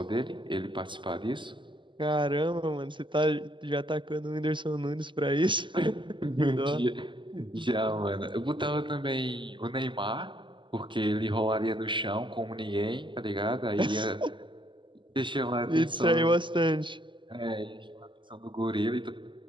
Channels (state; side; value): late; left; 0.24 ms